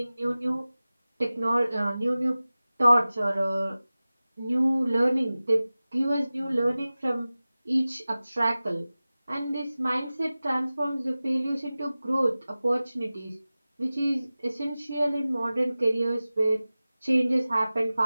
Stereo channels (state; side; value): inverted; both; correlation -0.97